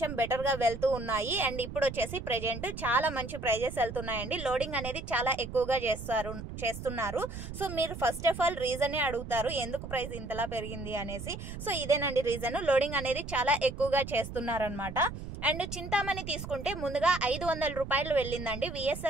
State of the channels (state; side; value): noise; right; rumble, 9 dB below the sound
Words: బెటర్గా వెళ్తూ ఉన్నాయి. అండ్ ఇప్పుడు వచ్చేసి ప్రెజెంట్ చాలా మంచి ప్రైజెస్ వెళ్తున్నాయండి. లోడింగ్ అనేది చాలా ఎక్కువగా చేస్తున్నారు. సో మీరు ఫస్ట్ ఆఫ్ ఆల్ రీజనే అడుగుతారు ఎందుకు ప్రైస్ ఇంతలా పెరిగింది అనేసి. సో ఇదేనండి రీజన్. లోడింగ్ అనేది చాలా ఎక్కువగా చేస్తున్నారనమాట. అండ్ చింతామణి తీసుకుంటే ముందుగా 500 రూపాయలు వెళ్ళిందండి.